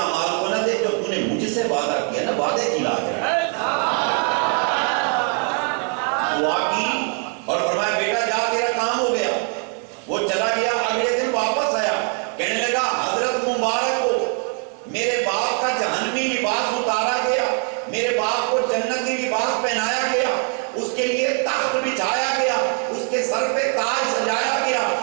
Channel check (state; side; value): quieter; left; 39.8 dB